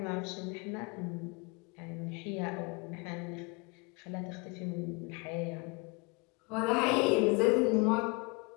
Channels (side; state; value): right; quieter; 28.6 dB